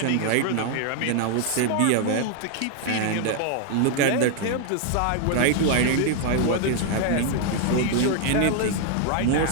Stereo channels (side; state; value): both; different; correlation 0.00